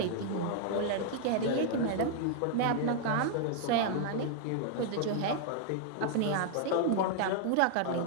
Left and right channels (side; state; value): both; different; correlation 0.00